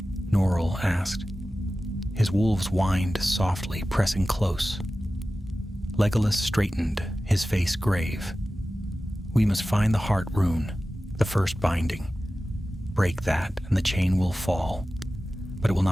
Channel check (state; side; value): normal; both; correlation 0.95